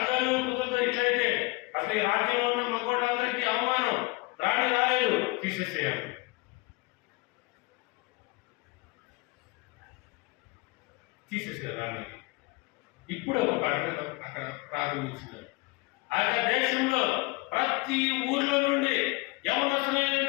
కుదురుతో ఇట్లయితే అసలు ఈ రాజ్యంలో ఉన్న మగోళ్ళందరికీ అవమానం, రాణి రాలేదు, తీసేసేయాలి. తీసేసారు రాణికి. ఇప్పుడు ఒక ప్రకటన అక్కడ ప్రారంభించినారు. ఆ దేశంలో ప్రతి ఊర్లో నుండి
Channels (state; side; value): quieter; right; 24.4 dB